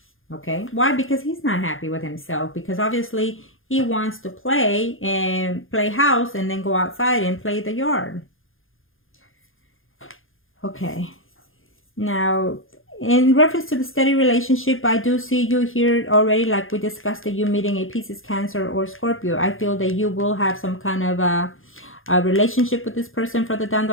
Okay? Why? Because he's not happy with himself. Because obviously he wants to play house and then go outside and play the yard. Okay. Now, in reference to the steady relationship, I do see you here already, like we discussed, that you meeting a Pisces, Cancer, or Scorpio. I feel that you will have some kind of a relationship with this person further down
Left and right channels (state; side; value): late; right; 0.59 ms